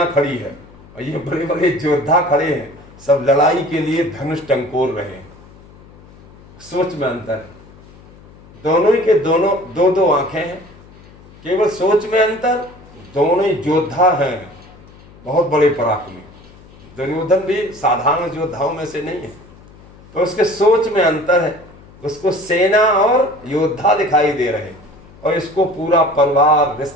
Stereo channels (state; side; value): noise; left; hum, 23 dB below the sound